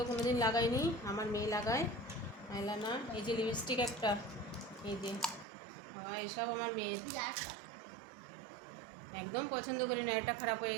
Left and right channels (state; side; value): drops out; left; at 5.5 s